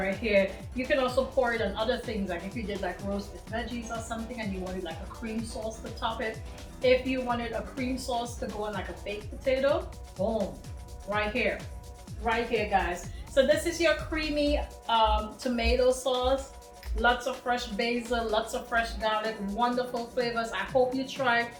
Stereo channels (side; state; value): both; identical; correlation 1.00